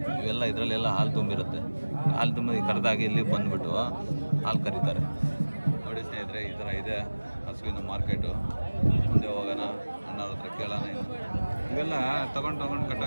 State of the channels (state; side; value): inverted; both; correlation -1.00